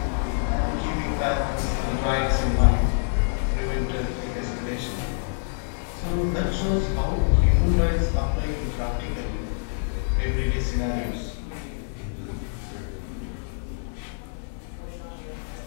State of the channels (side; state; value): right; silent; digital silence